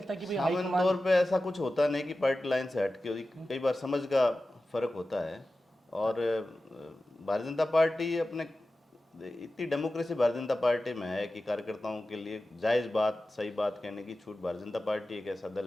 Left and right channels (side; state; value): both; normal; correlation 0.94